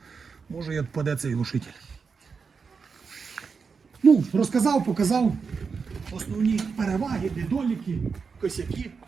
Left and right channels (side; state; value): left; quieter; 5.4 dB